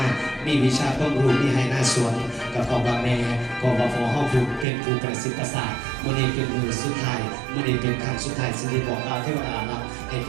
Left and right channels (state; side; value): drops out; left; at 4.7 s